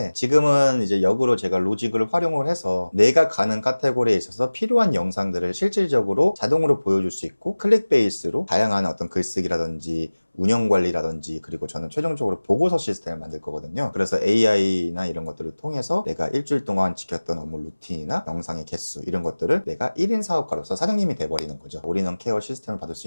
지금은 이제 역으로 제가 로직을 활용을 해서 내가 가는 카테고리에 있어서 필요한 영상들을 실질적으로 자동으로 보여줄 수 있고, 클릭 베이스로 다양한 어떤 글쓰기라든지 운영 관리라든지, 그리고 저는 최종적으로 보고서 시스템을 만들 거거든요. 그래서 AI나 이런 것들을 통해서 내가 일주일 동안 지켰던 업무 루틴이나 영상의 개수, 이런 것들을 내가 1인 사업가로서 사장님이 돼버리는 거죠. 올인원 케어 시스템을 받을 수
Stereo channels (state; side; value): inverted; both; correlation -1.00